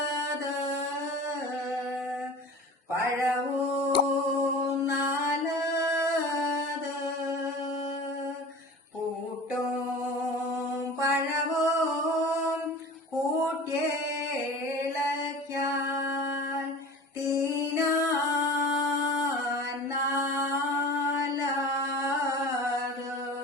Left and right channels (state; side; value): normal; both; correlation 0.38